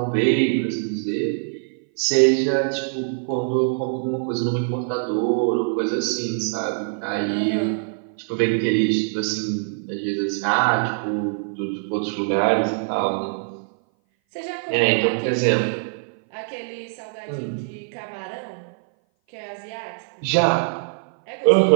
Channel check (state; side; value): silent; left; 58 dB below the other